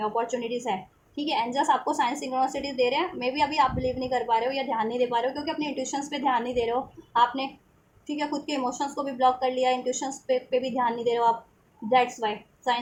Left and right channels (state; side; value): identical; both; correlation 1.00